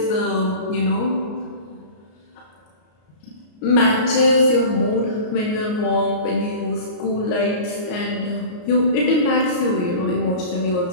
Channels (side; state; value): right; late; 33 ms